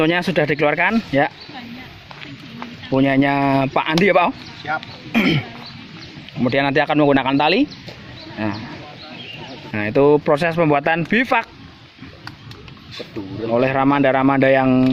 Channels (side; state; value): both; identical; correlation 1.00